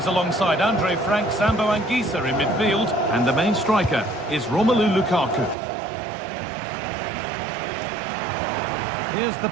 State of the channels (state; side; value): drops out; left; at 5.6 s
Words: alongside Andre Frank Sambo Anguissa in midfield. And the main striker is Romelu Lukaku. Here's the